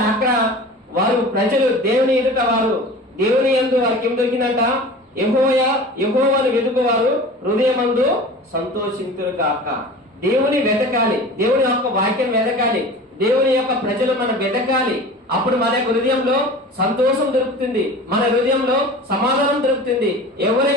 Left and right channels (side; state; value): both; normal; correlation 0.38